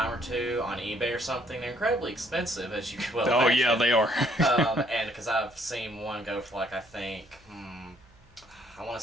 or two on eBay or something. They're incredibly expensive, as you well Oh imagine. yeah, they are. And because I've seen one go for like, I think, I want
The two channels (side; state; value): right; noise; hum, 28 dB below the sound